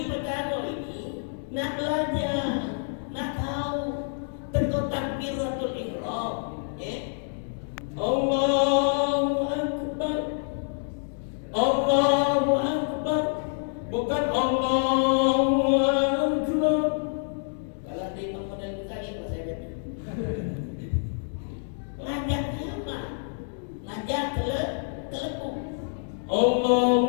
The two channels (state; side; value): silent; right; digital silence